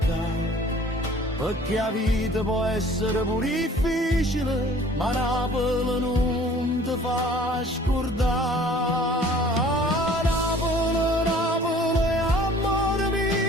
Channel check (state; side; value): normal; both; correlation 0.51